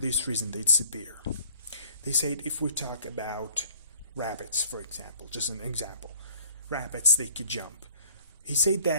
reason they disappear. They said if we talk about rabbits, for example, just an example, rabbits, they could jump. He said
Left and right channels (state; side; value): inverted; both; correlation -0.56